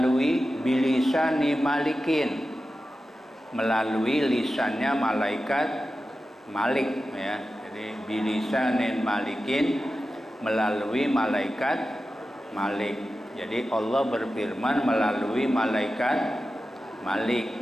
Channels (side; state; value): both; normal; correlation 0.93